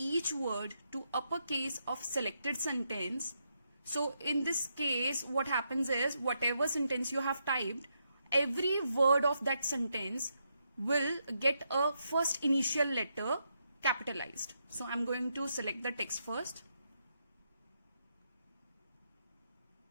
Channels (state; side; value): inverted; both; correlation -0.81